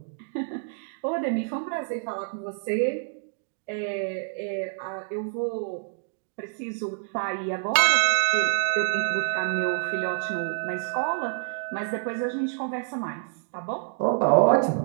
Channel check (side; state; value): left; silent; digital silence